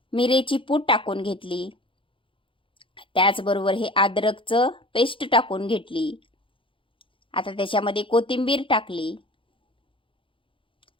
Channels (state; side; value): late; right; 0.25 ms